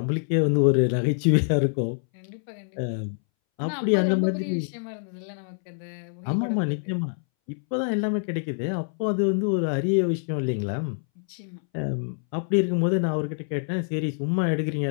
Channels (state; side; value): silent; right; 61 dB below the other